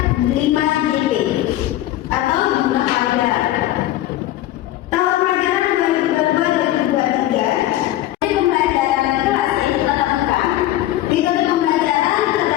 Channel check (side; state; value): right; quieter; 14.4 dB